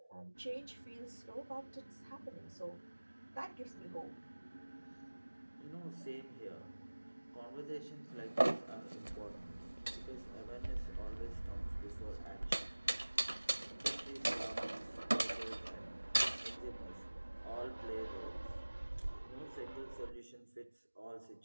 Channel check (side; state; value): both; inverted; correlation -1.00